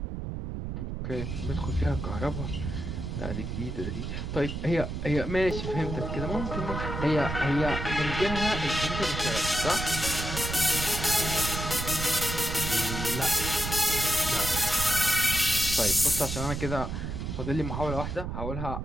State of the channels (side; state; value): right; noise; rumble, 4 dB below the sound